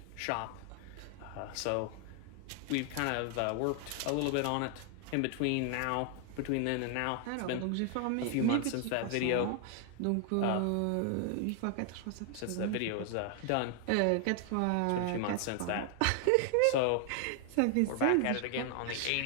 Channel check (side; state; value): both; different; correlation 0.00